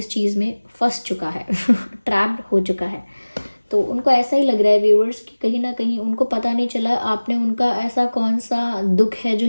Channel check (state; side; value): inverted; both; correlation -1.00